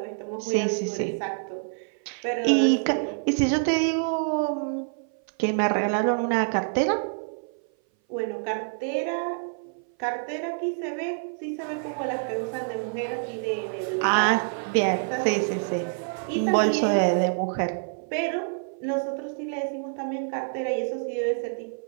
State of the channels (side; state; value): left; silent; 58 dB below the other